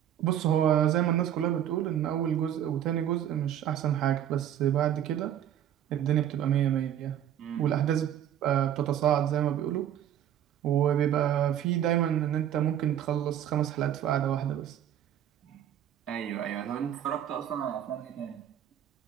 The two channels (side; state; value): left; quieter; 10.5 dB